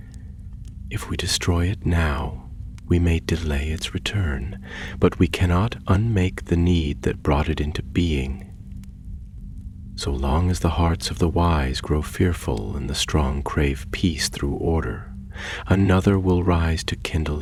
"If we destroy it now, we may delay its return, but we cannot unmake the need that brought it into being. So long as the hearts of the wise grow fearful and the strong crave peace through order, another will rise to kindle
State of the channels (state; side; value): identical; both; correlation 1.00